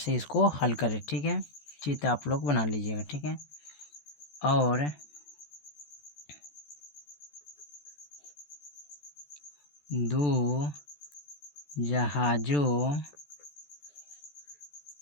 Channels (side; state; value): right; late; 14 ms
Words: इसको हल करें। ठीक है, चित्र आप लोग बना लीजिएगा। ठीक है, और दो जहाज़ों